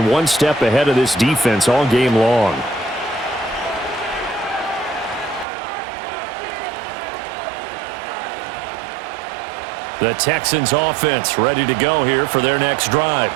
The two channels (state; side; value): drops out; left; at 5.5 s